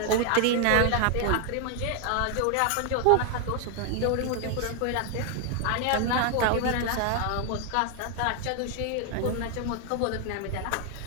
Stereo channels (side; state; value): both; different; correlation 0.01